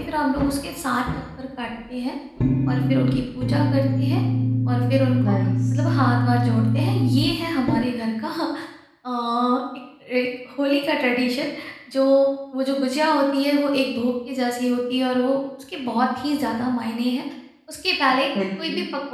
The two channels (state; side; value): identical; both; correlation 1.00